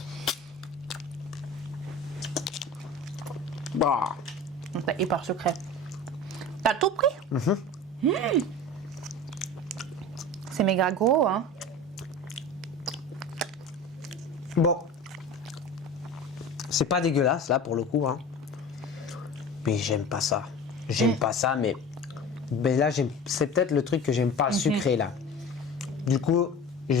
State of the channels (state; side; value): normal; both; correlation 0.35